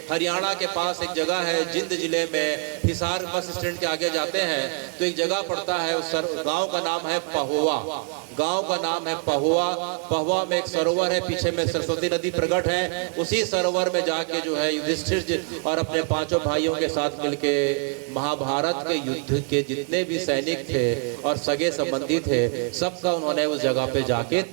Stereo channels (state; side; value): quieter; left; 40.0 dB